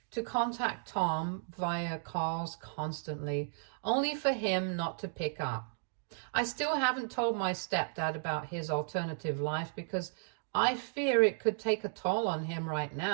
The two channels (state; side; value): silent; left; digital silence